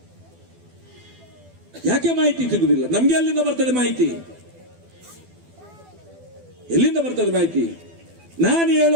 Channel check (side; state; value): left; late; 12 ms